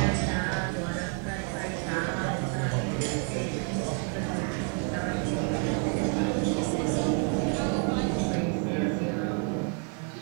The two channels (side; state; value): left; quieter; 39.6 dB